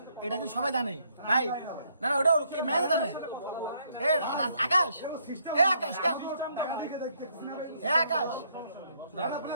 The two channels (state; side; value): inverted; both; correlation -0.70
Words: এটা কিন্তু সবাই জানে ভাই। না না, ওটা ম্যানেজার জানে। আকাশ, আকাশ কেন? আকাশ,